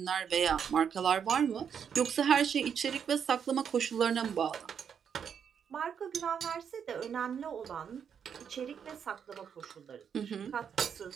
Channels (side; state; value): left; quieter; 7.6 dB